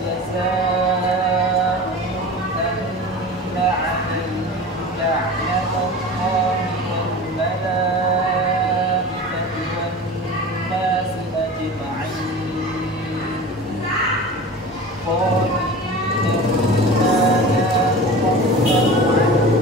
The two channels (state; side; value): normal; both; correlation 0.35